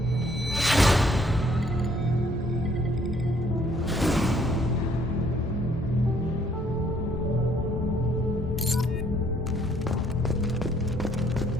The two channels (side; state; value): both; normal; correlation 0.65